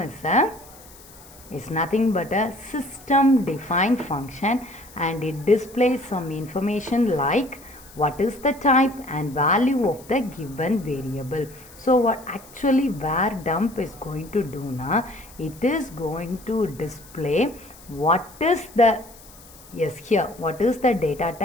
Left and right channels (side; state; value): left; noise; hiss, 22 dB below the sound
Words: is nothing but a system defined function and it displays some information like what is the type and value of the given variable. So what actually var dump is going to do now, it is going to display what is the what is the data